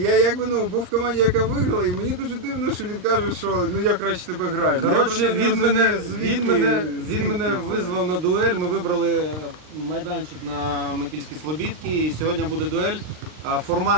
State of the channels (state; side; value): late; left; 39 ms